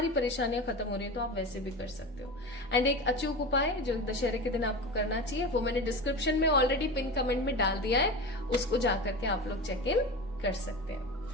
परेशानियां खत्म हो रही है, तो आप वैसे भी कर सकते हो। एंड एक अचूक उपाय जो दशहरे के दिन आपको करना चाहिए, वो मैंने डिस्क्रिप्शन में ऑलरेडी पिन कमेंट में डाल दिया है, उसको जाकर के आप लोग चेक इन कर सकते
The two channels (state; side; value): normal; both; correlation 0.28